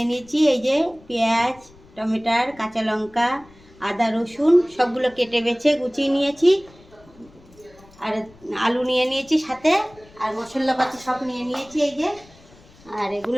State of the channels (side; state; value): left; noise; rumble, 26 dB below the sound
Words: নিয়েছি এই যে পেঁয়াজ, টমেটোর, কাঁচা লঙ্কা, আদা, রসুন সবগুলো কেটে বেছে গুছিয়ে নিয়েছি। আর আলু নিয়ে নিয়েছি সাথে, আর মশলাপাতি সব নিয়ে নিয়েছি এই যে। আর